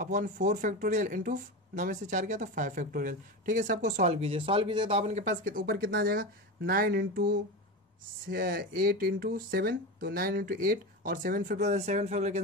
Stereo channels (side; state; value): both; normal; correlation 0.22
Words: 4 फैक्टोरियल इंटू 9 में से 4 गया तो 5 फैक्टोरियल। ठीक है, सबको सॉल्व कीजिए, सॉल्व कीजिए तो अपन के पास ऊपर कितना आ जाएगा, 9 इंटू 8 इंटू 7 तो 9 इंटू 8 और 7 फैक्टोरियल